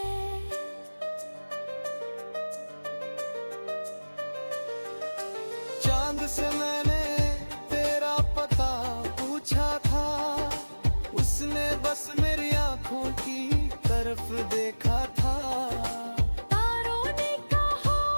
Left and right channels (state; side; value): inverted; both; correlation -1.00